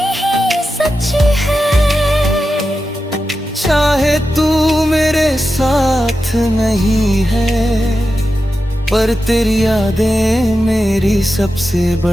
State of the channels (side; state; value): both; normal; correlation 0.91